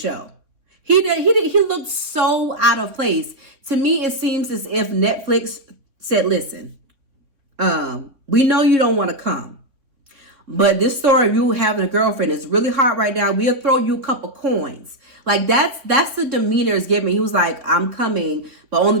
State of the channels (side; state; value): left; late; 3.6 ms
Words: He looked so out of place. To me, it seems as if Netflix said, listen, we know you don't want to come, but this story of you having a girlfriend is really hot right now. We'll throw you a couple coins. Like that's the demeanor it's giving. He was like, I'm coming, but only